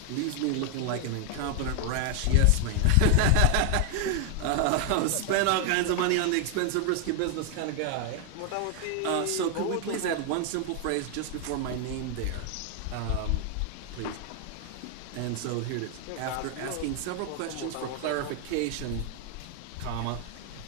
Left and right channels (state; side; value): different; both; correlation 0.00